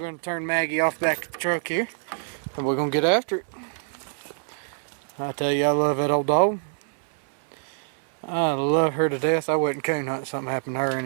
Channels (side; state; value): left; silent; 61 dB below the other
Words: to turn Maggie off back at the truck here, and we're going to get after it. I tell you, I love that old dog. I love her to death. I wouldn't coon hunt if something happened to her